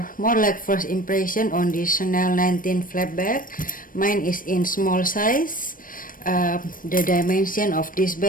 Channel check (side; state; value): right; late; 0.40 ms